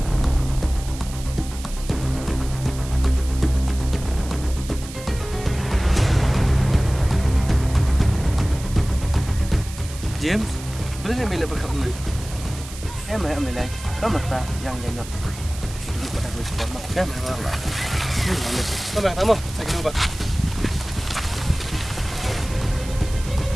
James, boleh ni bila berkat ni? Mah amilai. Kau mata yang jenok. Duduk pada gue sebab mak. Ya, memang. Sama, tamu. Saya kena buat.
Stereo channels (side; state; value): right; noise; hiss, 15 dB below the sound